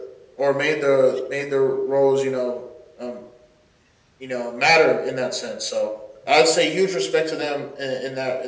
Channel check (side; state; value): both; identical; correlation 1.00